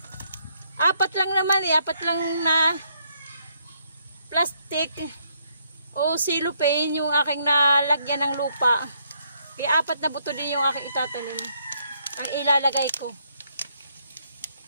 Apat lang na plastic o cellophane yung aking nalagyan ng lupa. Kaya 4 na buto din yung aking itatanim. Ang ilalagay ko.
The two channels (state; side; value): inverted; both; correlation -0.72